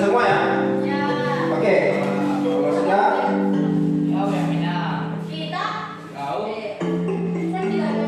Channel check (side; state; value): both; identical; correlation 1.00